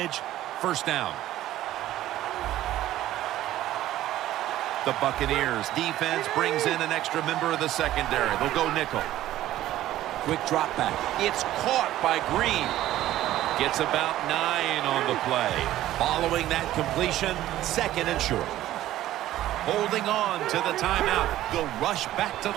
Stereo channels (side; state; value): left; quieter; 14.0 dB